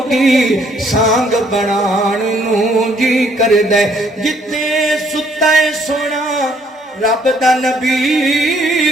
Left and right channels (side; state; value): both; normal; correlation 0.66